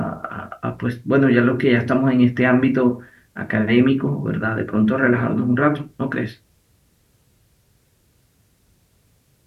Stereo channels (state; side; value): identical; both; correlation 1.00